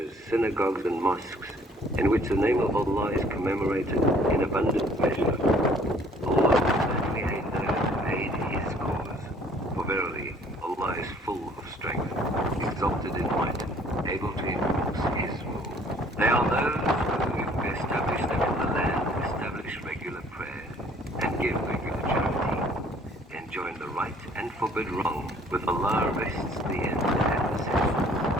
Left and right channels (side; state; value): both; normal; correlation 0.57